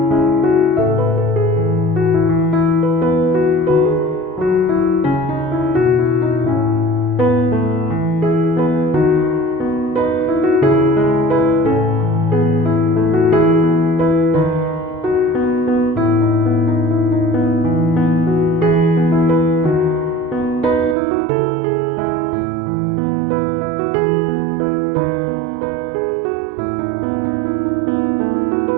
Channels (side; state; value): left; drops out; at 21.0 s